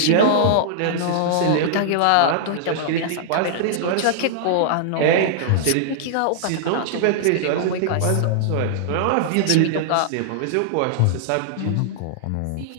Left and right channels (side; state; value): both; different; correlation -0.01